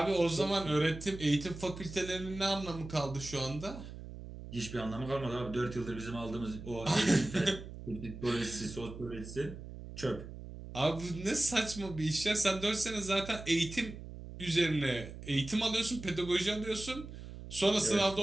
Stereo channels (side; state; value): right; noise; hum, 12 dB below the sound